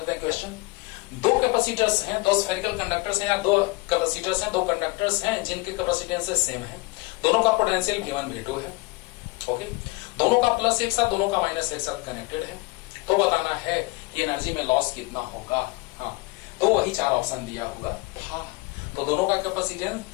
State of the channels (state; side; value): quieter; right; 24.0 dB